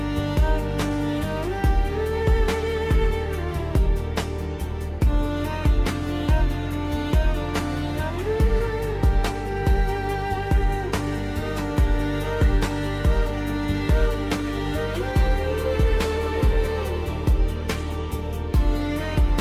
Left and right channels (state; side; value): identical; both; correlation 1.00